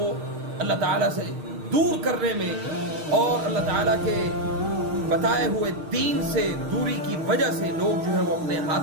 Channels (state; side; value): late; left; 6.5 ms